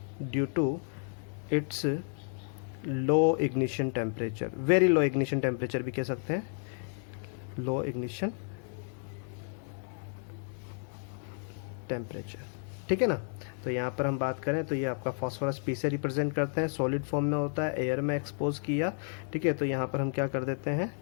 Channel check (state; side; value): silent; right; 56 dB below the other